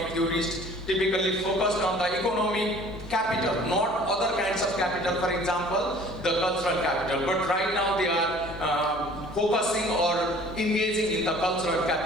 theorists typically focused on the economic capital, not other kinds of capital, for example, the cultural capital. But right now they are focusing or engaging in the cultural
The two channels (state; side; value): normal; both; correlation 0.50